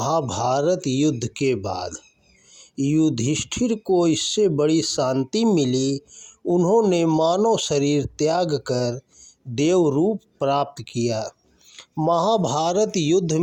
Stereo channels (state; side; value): identical; both; correlation 1.00